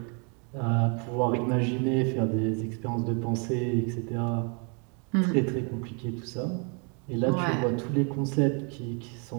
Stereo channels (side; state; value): left; quieter; 36.6 dB